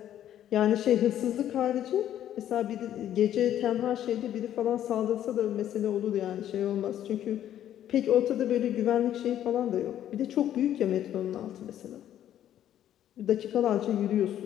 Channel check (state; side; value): quieter; right; 11.3 dB